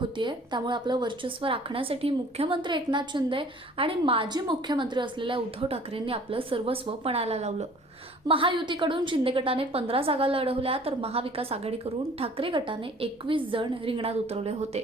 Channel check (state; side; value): normal; both; correlation 0.51